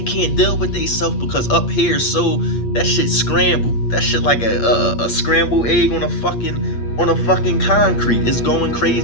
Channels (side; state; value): right; late; 8.5 ms